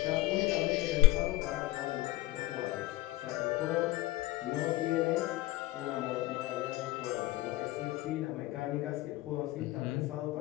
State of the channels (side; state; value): right; quieter; 17.9 dB